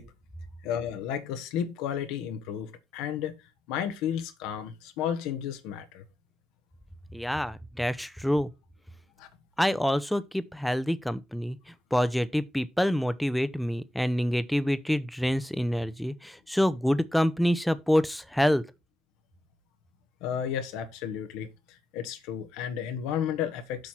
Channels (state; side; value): normal; both; correlation 0.87